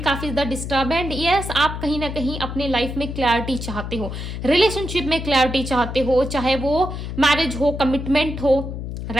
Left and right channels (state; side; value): noise; left; hum, 6 dB below the sound